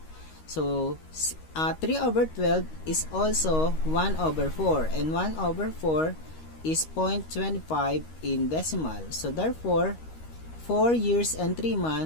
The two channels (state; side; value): late; right; 13 ms